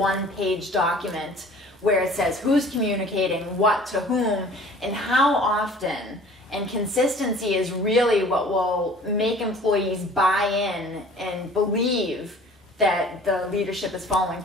document where it says who's communicating what to whom and how often. And consistency is really what will make employees buy in and believe that the leadership is following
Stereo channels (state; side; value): normal; both; correlation 0.48